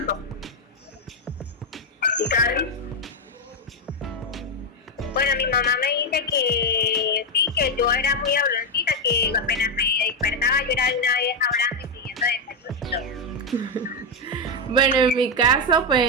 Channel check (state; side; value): normal; both; correlation 0.04